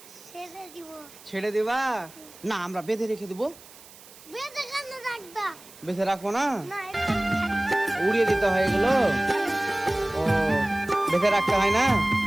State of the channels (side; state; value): right; noise; hiss, 21 dB below the sound